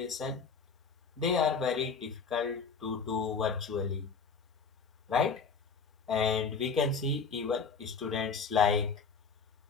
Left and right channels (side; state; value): right; quieter; 5.3 dB